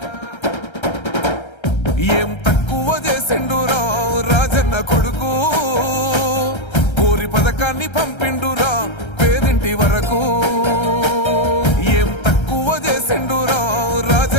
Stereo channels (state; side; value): late; right; 1.3 ms